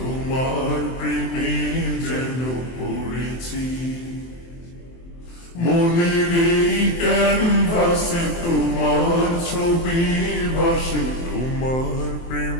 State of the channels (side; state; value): right; late; 23 ms